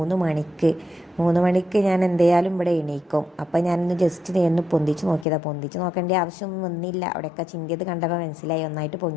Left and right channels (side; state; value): right; drops out; at 5.2 s